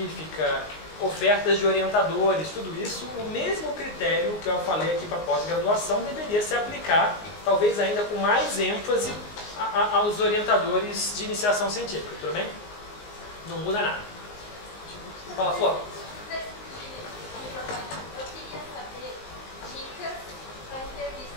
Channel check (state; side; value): late; right; 19 ms